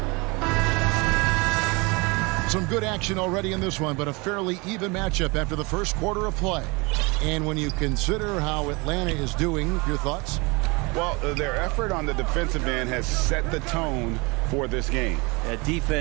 Some good action already in this one, but a fairly even matchup after the first quarter of play. And when you consider how Atlanta is doing, your thoughts? Well, their effort on the defensive end has set the tone for this game. That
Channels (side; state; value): left; quieter; 27.0 dB